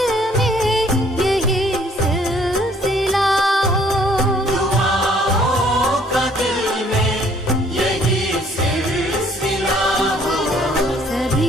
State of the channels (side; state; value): both; normal; correlation 0.60